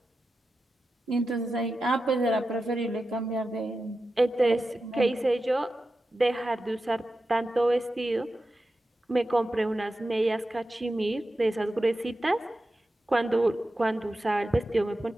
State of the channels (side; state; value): both; normal; correlation 0.91